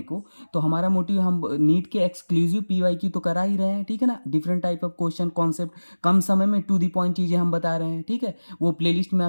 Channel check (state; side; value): inverted; both; correlation -1.00